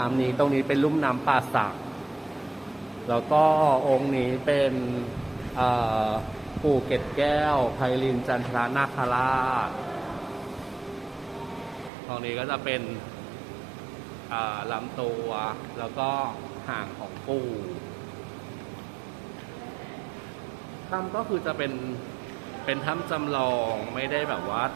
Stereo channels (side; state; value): left; drops out; at 11.9 s